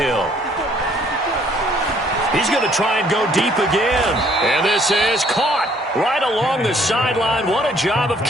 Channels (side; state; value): both; normal; correlation 0.62